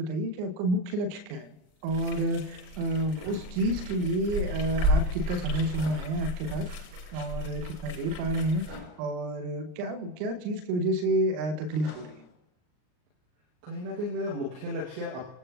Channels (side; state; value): left; late; 39 ms